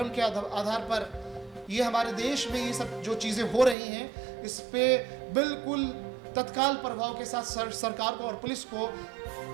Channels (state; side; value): drops out; left; at 3.8 s